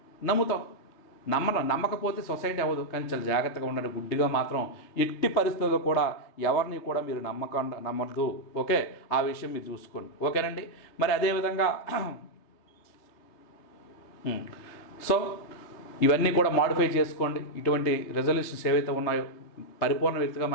నమ్ముతాం. నమ్మకపోతే సొసైటీ అవ్వదు. కానీ చాలా జాగ్రత్తగా ఉండండి. గుడ్డిగా మాత్రం ఎట్టి పరిస్థితుల్లో కూడా ఎవరిని కూడా మీరు నమ్మద్దు. ఓకే, ఆ విషయం మీరు చూసుకోండి. ఓకేనండి. మరి అదేవిధంగా సో ఇవన్నీ కూడా మాడిఫై చేసుకోండి. ఇటువంటి రెజల్యూషన్స్ ఏవైతే ఉన్నాయో, పరిపూర్ణ వ్యక్తిగా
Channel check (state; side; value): late; right; 3.3 ms